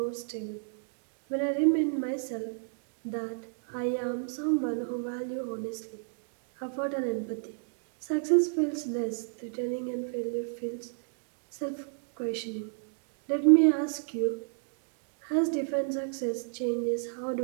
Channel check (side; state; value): left; silent; digital silence